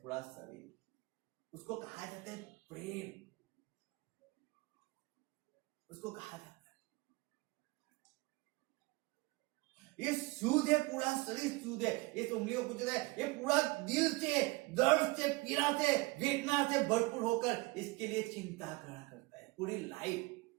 पूरा शरीर। उसको कहा जाता है प्रेम, उसको कहा जाता है। ये सूद है, पूरा शरीर सूद है। इस उंगलियों को जो है ये पूरा दिल से, दर्द से, पीड़ा से, वेदना से भरपूर होकर इसके लिए चिंता करा करता है पूरी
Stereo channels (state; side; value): quieter; left; 24.2 dB